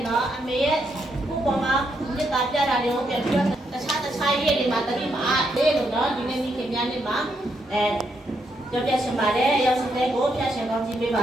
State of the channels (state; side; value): normal; both; correlation 0.78